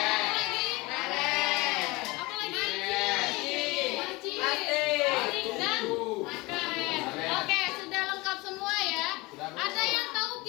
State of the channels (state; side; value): quieter; right; 23.1 dB